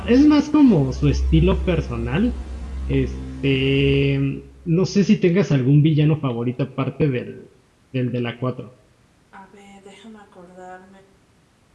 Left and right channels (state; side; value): identical; both; correlation 1.00